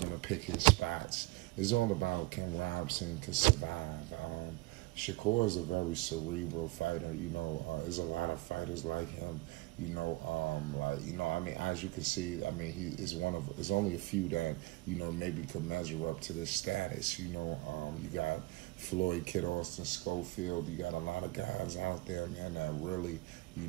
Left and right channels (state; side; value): quieter; left; 21.6 dB